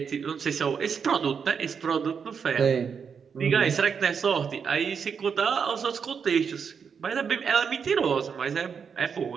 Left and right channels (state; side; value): quieter; left; 6.5 dB